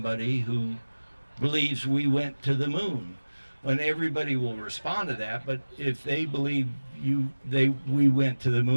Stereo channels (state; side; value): inverted; both; correlation -1.00